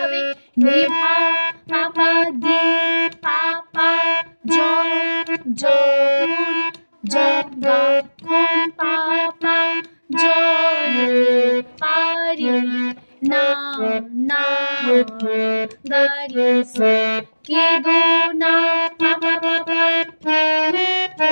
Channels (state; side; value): inverted; both; correlation -1.00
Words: হবে? নিভা পাপা দি পাপা জ জ গা কোন পাপা জ পারি না না গারি সা কে দো না পাপা পাপা